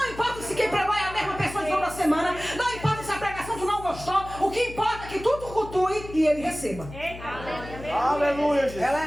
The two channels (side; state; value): left; noise; hum, 14 dB below the sound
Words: importa se quem pregou é a mesma pessoa de toda semana, não importa se a pregação tu não gostou, o que importa é que tu cultue e Ele receba. Aleluia, Jesus. Ela